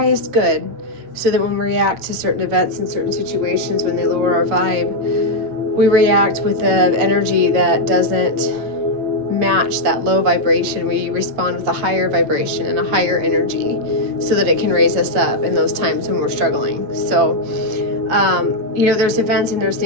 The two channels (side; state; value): left; late; 8.5 ms